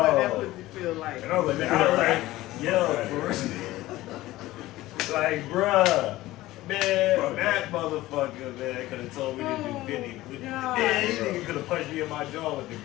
that pussy feel like. And I was like, man, I was like, yo, for real. Like, bruh, man, that motherfucker, man, could have told me to do 50. Man, this nigga could have punched me in my jaw with the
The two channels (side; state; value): right; quieter; 17.1 dB